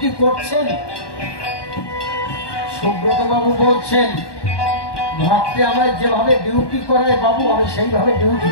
করছেন? সুব্রত বাবু বলছেন, ভক্তে আমায় যেভাবে ডিউটি করায় বাবু আমি সেইভাবে ডিউটি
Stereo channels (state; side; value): late; right; 1.2 ms